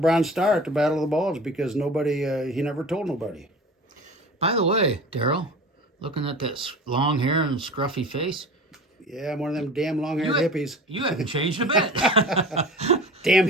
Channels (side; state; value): both; normal; correlation 0.38